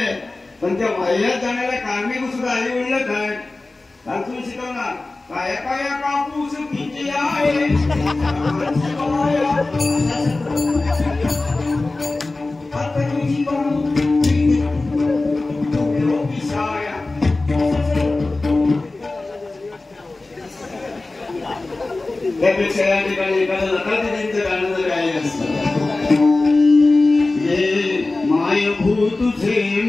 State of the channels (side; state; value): right; quieter; 3.2 dB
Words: पण त्या वाह्यात जाण्याला कारणीभूत सुद्धा आई वडीलच आहे. तुम्ही शिकवणार काय काय कापूस किती आहे. त्यापेक्षा या ठिकाणी एखादं लतादीदींचं गाणं जर गायलं असतं, हे मायभू तुझे